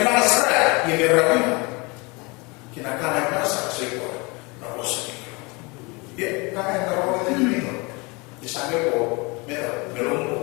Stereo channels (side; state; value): right; quieter; 27.6 dB